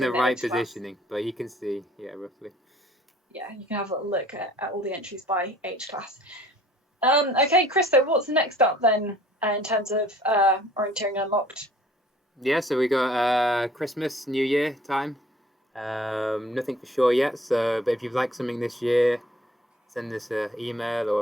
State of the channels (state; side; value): normal; both; correlation 0.54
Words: within right age class. positioning, but you can see, yeah, roughly. Yeah, you can have a look at all the entries by age class. Okay, Chris, so what's next up then in terms of orienteering unlocked? Yeah, so we got Christmas, New Year time. Nothing for sure yet, but if you'd like something this year, send us an email or